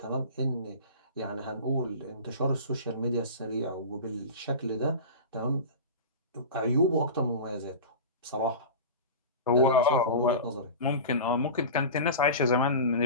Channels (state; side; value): inverted; both; correlation -0.31